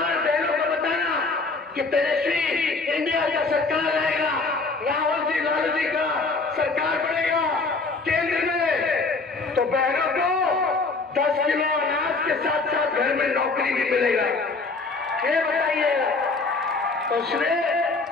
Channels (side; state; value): right; quieter; 3.8 dB